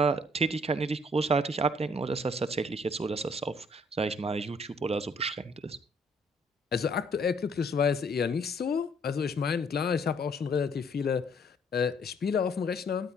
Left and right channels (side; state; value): both; normal; correlation 0.63